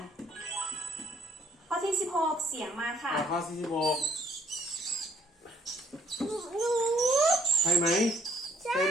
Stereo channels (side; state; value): both; normal; correlation 0.65